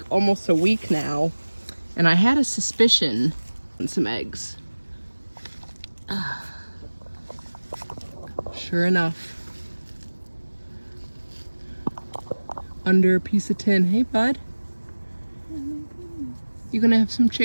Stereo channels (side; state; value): both; inverted; correlation -1.00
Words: almost a week now. And I had a suspicion on some eggs. Sure enough. Under a piece of tin. Hey, bud. You gonna have some